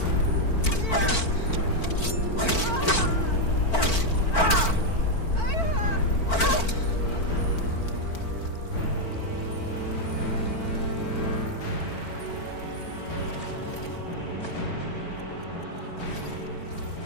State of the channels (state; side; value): late; right; 4.5 ms